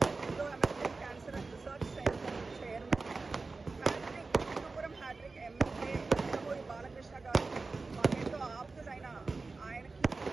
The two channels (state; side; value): quieter; left; 3.9 dB